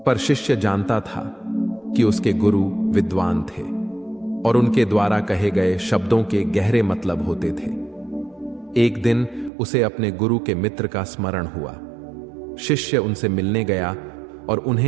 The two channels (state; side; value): drops out; left; at 9.5 s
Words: पर शिष्य जानता था कि उसके गुरु विद्वान थे और उनके द्वारा कहे गए शब्दों के गहरे मतलब होते थे। एक दिन उसे अपने गुरु के मित्र का स्मरण हुआ। शिष्य उनसे मिलने गया और